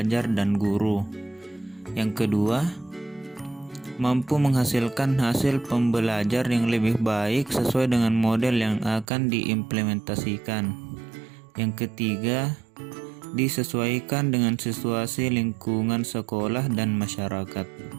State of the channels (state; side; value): drops out; left; at 9.1 s